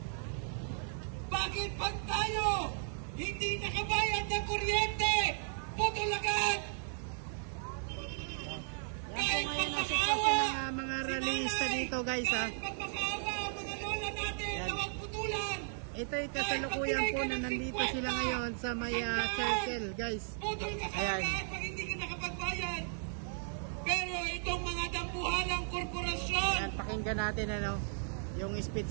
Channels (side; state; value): left; silent; 54 dB below the other